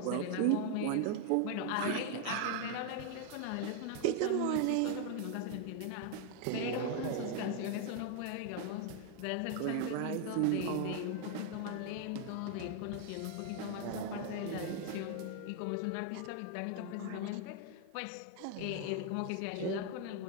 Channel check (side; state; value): both; different; correlation 0.00